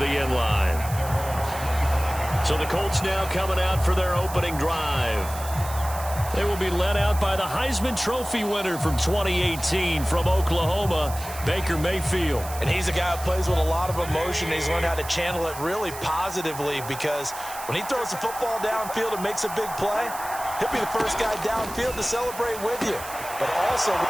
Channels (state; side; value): noise; right; hiss, 12 dB below the sound